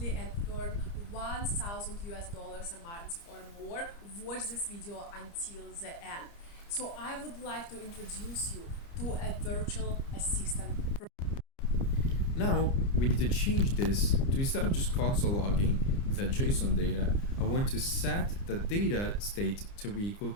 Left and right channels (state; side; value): late; right; 30 ms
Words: and earn $1,000 a month or more, watch this video until the end. So I would like to introduce you to a virtual assistant. Now we need to change this to, instead of just console logging the JSON data, I want to set the data state to be equal